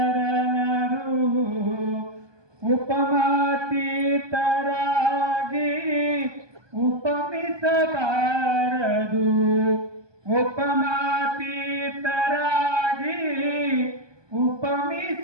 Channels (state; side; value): late; left; 1.2 ms